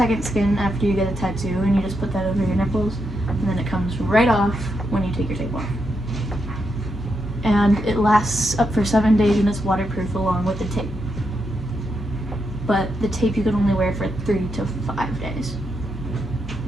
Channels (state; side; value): normal; both; correlation 0.83